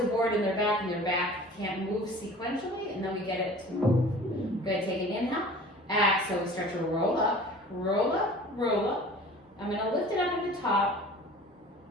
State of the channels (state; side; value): normal; both; correlation 0.44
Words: a board in their back, and their back can't move sequentially, and then we get it to move. Good, take an inhale. Exhale, we start to roll up, roll up, roll up. I'm gonna lift it up at the top.